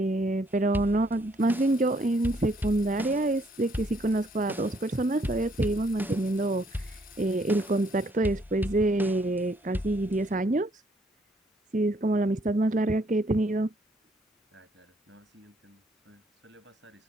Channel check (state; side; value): normal; both; correlation 0.68